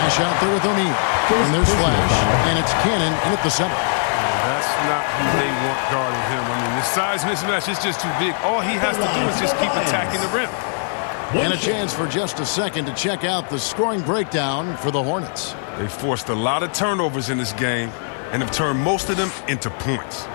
out there with O'Neal. And there's Flash. And it's Cannon in at the center. That's not who they want guarding him. I mean, the size mismatch is just too big. All he has to do is just keep attacking the rim. And a chance for just a second to check out the scoring breakdown for the Hornets. They forced a lot of turnovers in this game and have turned most of them into points.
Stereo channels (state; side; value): silent; right; digital silence